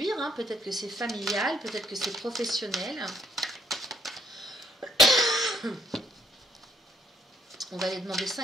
hein. Peut-être que c'est familial, peut-être que c'est professionnel. On va aller demander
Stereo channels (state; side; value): normal; both; correlation 0.71